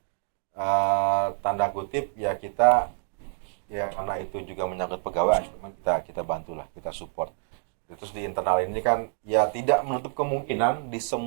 tanda kutip ya kita ya karena itu juga menyangkut pegawai, kita bantulah, kita support. Terus di internal ini kan ya tidak menutup kemungkinan di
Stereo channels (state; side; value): silent; left; digital silence